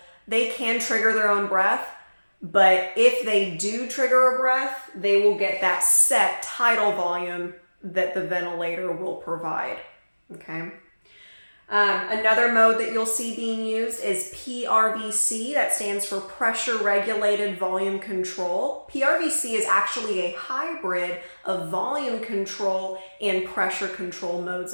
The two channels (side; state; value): both; inverted; correlation -1.00